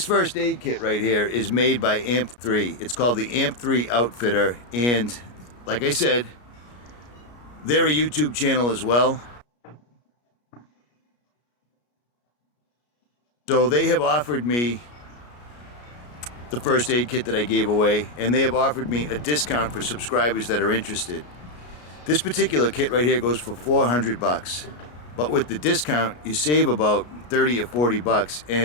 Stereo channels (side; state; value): right; late; 33 ms